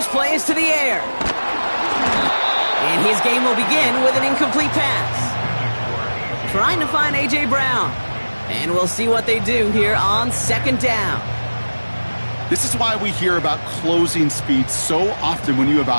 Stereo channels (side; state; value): both; inverted; correlation -1.00